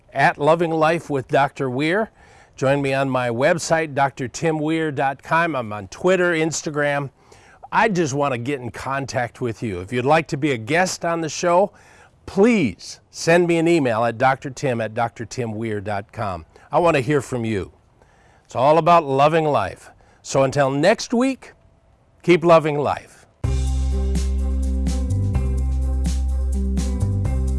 at Loving Life with Dr. Weir. Join me on my website, drtimweir.com. I'm on Twitter, Instagram. I just want to get in contact with you. If you'd like to be a guest on the show, please send me an email at drtim@drtimweir.com. I want to hear from you. It's all about loving life. So until next week, keep loving life.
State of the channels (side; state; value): both; identical; correlation 1.00